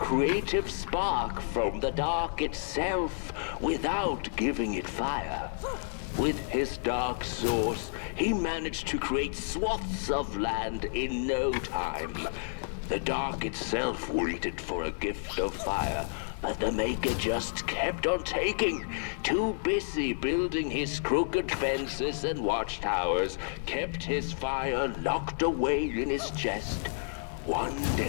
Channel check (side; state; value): right; silent; digital silence